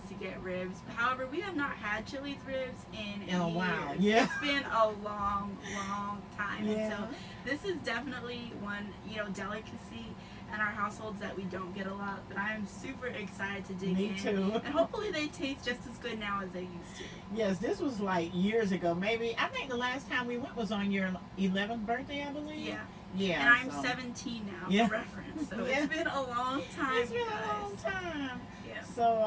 to get ribs. However, we have not had Chili's ribs in a years. while. Yeah. It's been a long, long time. Yeah. And so this is definitely one, delicacy in our households that we don't get a lot, but I am super excited to dig in. Me too. And hopefully they taste just as good now as they used to. Yes, this was like years ago. Maybe, I think the last time we went was on your 11th birthday, I believe. Yeah. Yeah. And I'm 17 now, Yeah. for reference. So Yeah. it's been a long time, It's been guys. a long time. Yeah.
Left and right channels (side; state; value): both; identical; correlation 1.00